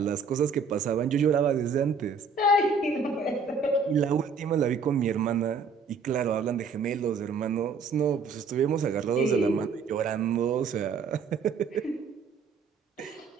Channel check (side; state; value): left; quieter; 4.9 dB